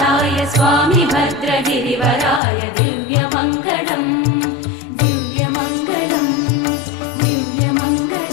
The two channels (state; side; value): drops out; right; at 2.4 s